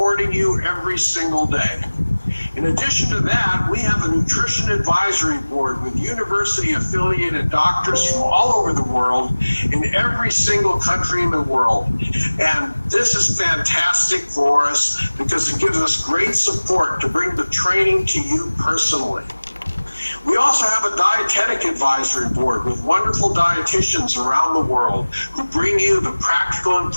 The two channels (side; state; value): both; inverted; correlation -1.00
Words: you every single day. In addition to that, we have a nutrition advisory board with university-affiliated doctors from all over the world in every single country in the world. And this is fantastic for us because it gives us great support to bring the training to you personally. We also have a dietetic advisory board with wonderful dietitians around the world who bring you the practical